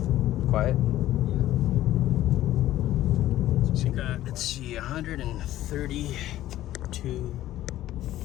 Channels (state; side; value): quieter; right; 14.0 dB